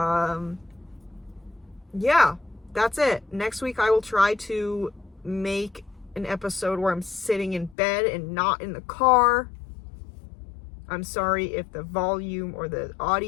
Yeah, that's it. Next week I will try to make an episode where I'm sitting in bed and not in the car. I'm sorry if the volume or the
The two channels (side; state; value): right; drops out; at 7.8 s